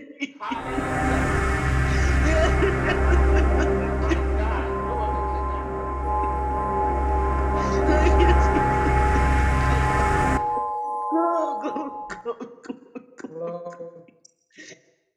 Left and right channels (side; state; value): both; identical; correlation 1.00